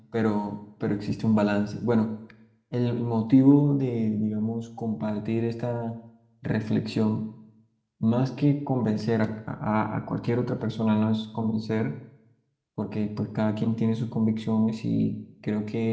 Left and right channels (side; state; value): both; identical; correlation 1.00